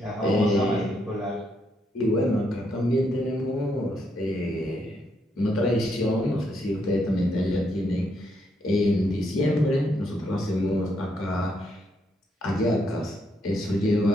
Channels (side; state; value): both; normal; correlation 0.76